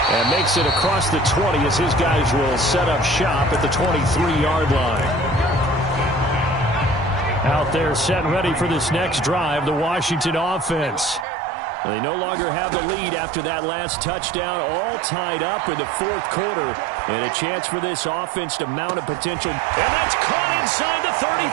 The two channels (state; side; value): drops out; left; at 11.2 s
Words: And makes it across the 20 as his guys will set up shop at the 23-yard line. Out there set and ready for this next drive, the Washington offense. They no longer have the lead after that last touchdown, all tied up in the 4th quarter. And a chance for this offense to mount a potential. And that's caught inside the